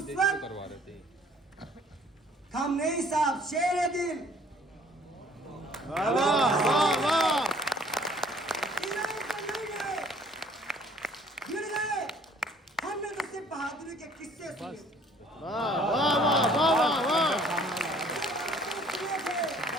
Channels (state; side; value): normal; both; correlation 0.57